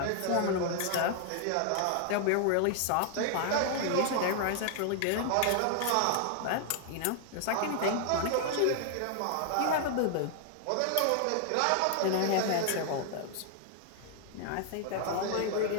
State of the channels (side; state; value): both; different; correlation 0.00